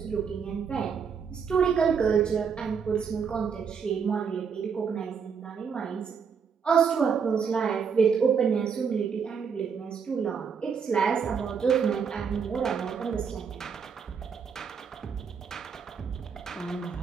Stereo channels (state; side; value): quieter; left; 6.4 dB